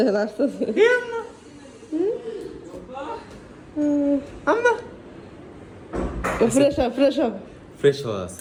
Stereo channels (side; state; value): both; identical; correlation 1.00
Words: আসতেছে, ফ্রেশ হওয়া